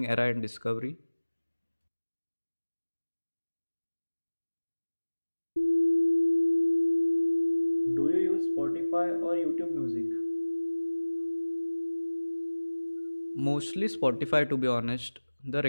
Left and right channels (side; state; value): both; inverted; correlation -1.00